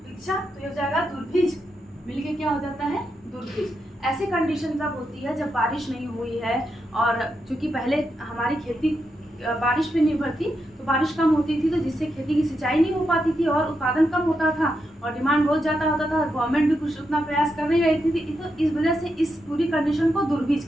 भिक्षा, तो ये हो जाएगा दुर्भिज, मिलके क्या हो जाता है? दुर्भिज। ऐसी कंडीशन तब होती है जब बारिश नहीं हुई है, और चूंकि पहले हमारी खेती बारिश पे निर्भर थी, तो बारिश कम होती थी, तो जिससे खेती की सिंचाई नहीं हो पाती थी और उत्पादन कम होता था और डिमांड बहुत ज़्यादा होता था। गवर्नमेंट भी कुछ उतना प्रयास कर नहीं रही थी, तो इस वजह से इस पूरी कंडीशन को दुर्भिज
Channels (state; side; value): normal; both; correlation 0.84